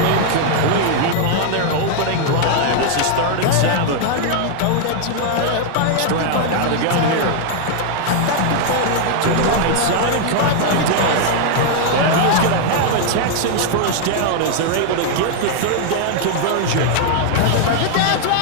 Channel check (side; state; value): both; different; correlation 0.00